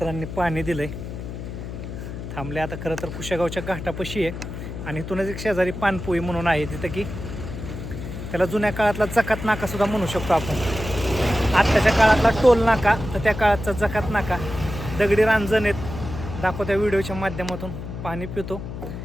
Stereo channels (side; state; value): left; noise; hum, 8 dB below the sound